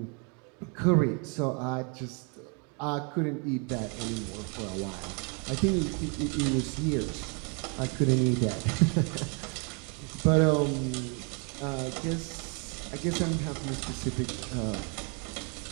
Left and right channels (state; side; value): quieter; left; 35.3 dB